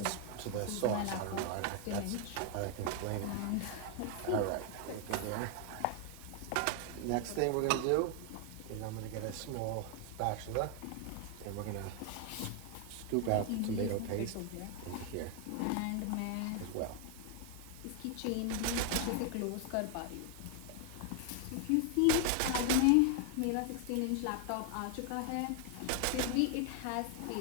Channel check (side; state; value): both; different; correlation 0.00